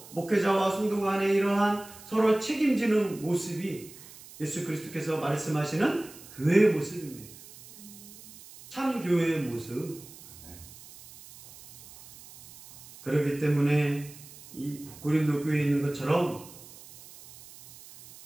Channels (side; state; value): right; noise; hiss, 19 dB below the sound